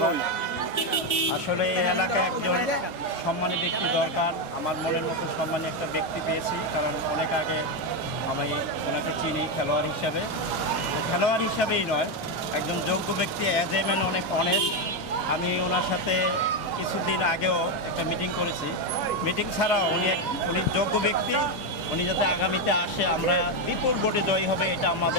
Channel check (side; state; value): both; normal; correlation 0.07